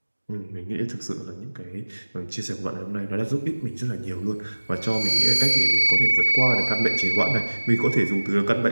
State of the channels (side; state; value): both; inverted; correlation -1.00